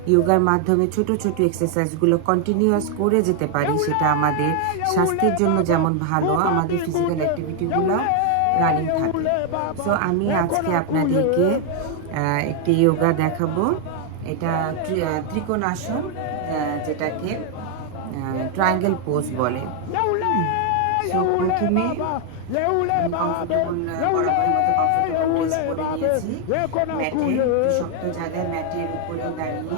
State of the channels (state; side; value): different; both; correlation 0.00